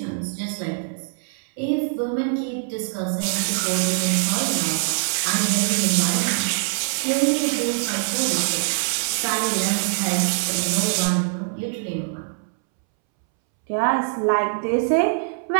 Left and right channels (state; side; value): silent; left; 63 dB below the other